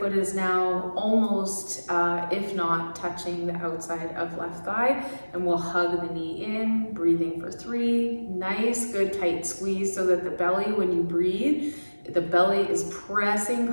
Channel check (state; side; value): inverted; both; correlation -1.00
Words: is now almost, if not touching the outside of left thigh, and we'll hug the knee in, breathing for 3. Nice, good, tight squeeze so that the belly, when you breathe, the belly is pressing,